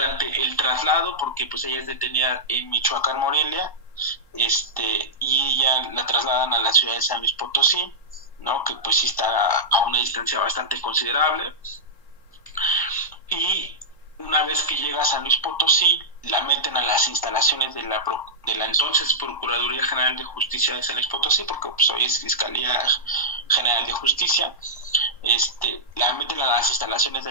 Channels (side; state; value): right; late; 1.0 ms